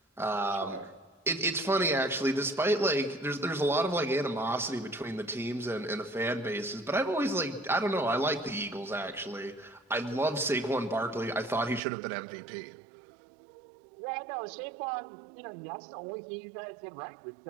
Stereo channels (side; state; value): left; drops out; at 11.8 s